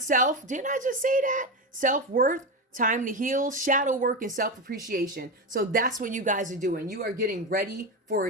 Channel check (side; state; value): both; normal; correlation 0.16